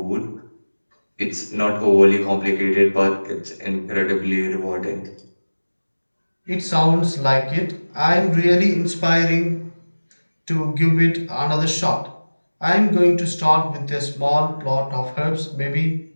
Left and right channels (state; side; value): inverted; both; correlation -1.00